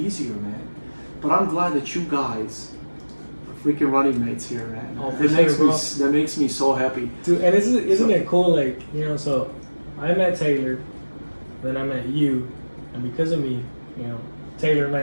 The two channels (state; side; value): inverted; both; correlation -1.00